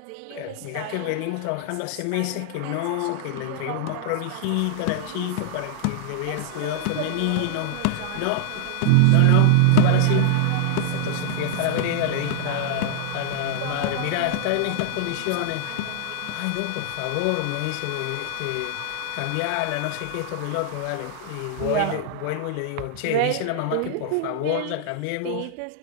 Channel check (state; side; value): different; both; correlation 0.00